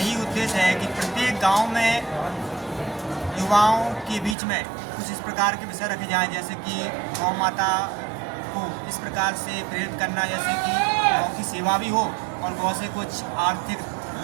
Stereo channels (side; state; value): left; drops out; at 4.4 s